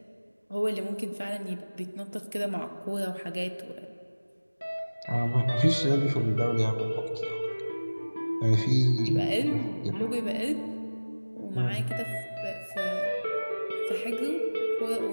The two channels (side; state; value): both; inverted; correlation -1.00